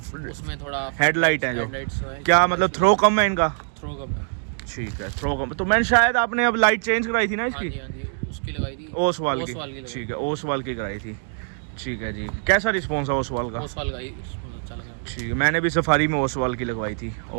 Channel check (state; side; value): silent; left; 62 dB below the other